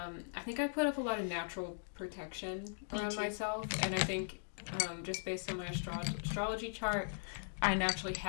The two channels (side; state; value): right; silent; digital silence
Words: I think I put up a lot of natural protection around myself. And I think just based on my astrology chart, I naturally